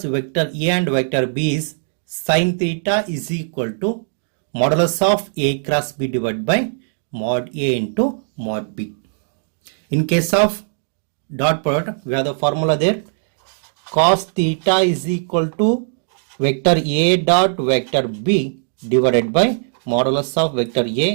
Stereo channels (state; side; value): silent; left; digital silence